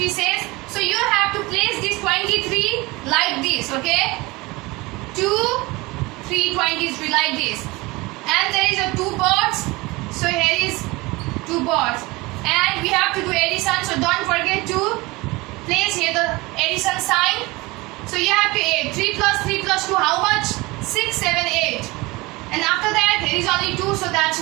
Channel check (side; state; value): left; quieter; 22.7 dB